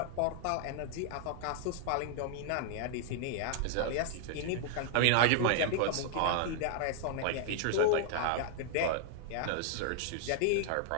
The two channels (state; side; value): different; both; correlation 0.00